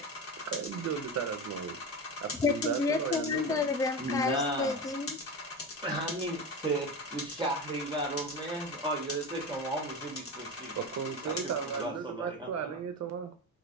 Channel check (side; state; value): both; normal; correlation 0.23